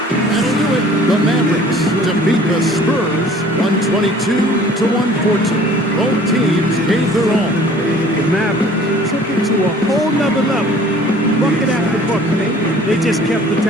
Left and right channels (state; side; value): normal; both; correlation 0.51